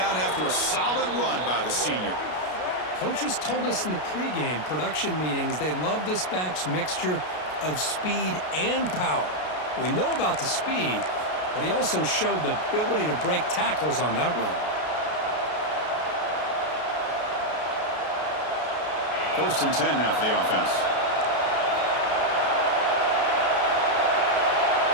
after a solid run by the senior. Coaches told us in the pregame production meetings they love this back's mixture of speed and power. We know about the speed, but he also showed the ability to break tackles on that run. First and 10 now for the offense.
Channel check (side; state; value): right; late; 33 ms